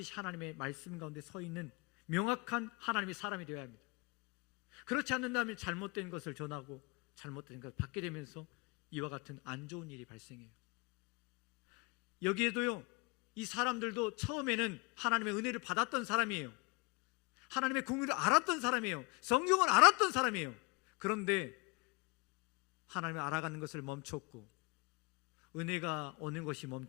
하나님의 말씀 가운데 서 있는 명확한 하나님의 사람이 되어야 합니다. 그렇지 않는다면 잘못된 것을 전하고 잘못된 것을 받게 되면서 이와 같은 안 좋은 일이 발생해요. 여기에도요, 이 사람들도 처음에는 하나님의 은혜를 받았던 사람이에요. 하나님의 공의를 알았던 사람이에요. 성경을 알았던 사람이에요. 그런데 하나님을 알아가는 것을 멈췄고, 은혜가 오는 것이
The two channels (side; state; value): right; quieter; 26.6 dB